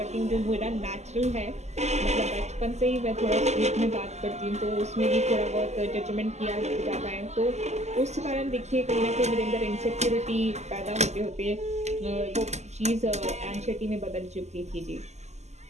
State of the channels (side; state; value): left; late; 0.33 ms